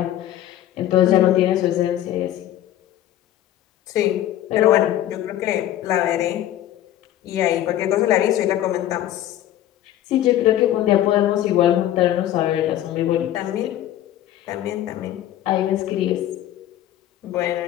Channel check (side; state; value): right; quieter; 12.7 dB